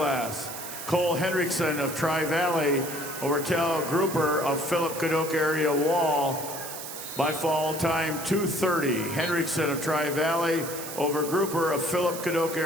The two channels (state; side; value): noise; right; hiss, 9 dB below the sound